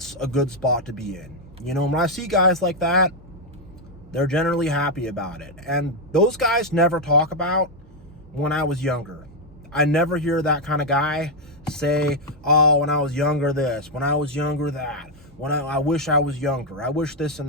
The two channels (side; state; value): both; normal; correlation 0.01